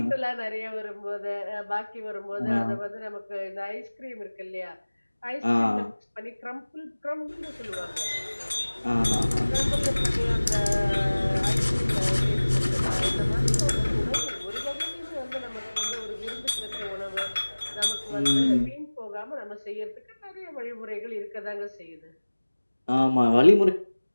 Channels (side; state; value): both; inverted; correlation -1.00